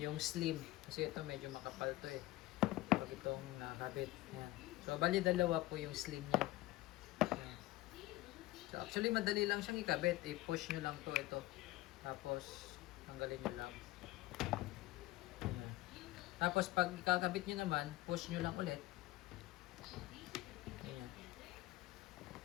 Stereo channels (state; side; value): quieter; right; 17.7 dB